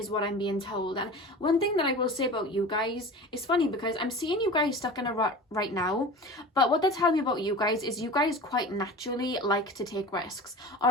what I'm being told. And one thing that I will say about you guys, it's funny because I'm seeing you guys stuck in a rut right now, but what they tell me about you guys is you guys quite naturally like to take risks,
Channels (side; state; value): both; normal; correlation 0.35